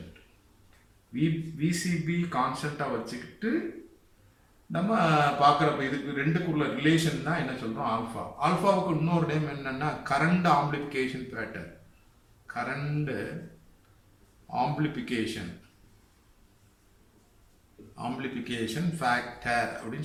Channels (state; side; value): identical; both; correlation 1.00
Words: விசிபி கான்ஸ்டண்ட்டாக வச்சுக்கிட்டு நம்ம பார்க்குறப்ப இதுக்கு ரெண்டுக்குள்ள ரிலேஷன் தான் என்ன சொல்கிறோம்? ஆல்ஃபா. ஆல்ஃபாவுக்கு இன்னொரு நேம் என்னன்னா current amplification pattern. Current amplification factor